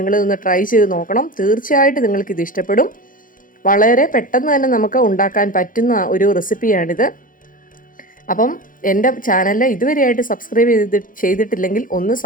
ട്രൈ ചെയ്ത് നോക്കണം. തീർച്ചയായിട്ടും നിങ്ങൾക്കിത് ഇഷ്ടപ്പെടും. വളരെ പെട്ടെന്ന് തന്നെ നമുക്ക് ഉണ്ടാക്കാൻ പറ്റുന്ന ഒരു റെസിപ്പിയാണിത്. അപ്പം എൻ്റെ ചാനൽ ഇതുവരെയായിട്ട് സബ്സ്ക്രൈബ് ചെയ്തിട്ടില്ലെങ്കിൽ ഒന്ന്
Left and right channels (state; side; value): late; right; 0.40 ms